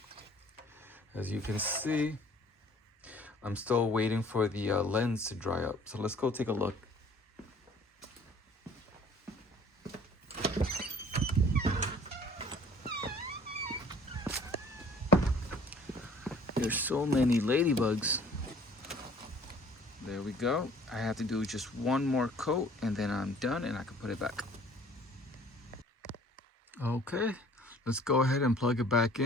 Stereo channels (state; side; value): normal; both; correlation 0.53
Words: as you can see, I'm still waiting for the lens to dry up. So let's go take a look. There's so many ladybugs. There we go. I have to do just one more coat and then I'm done and I can put it back. Okay, let's go ahead and plug it back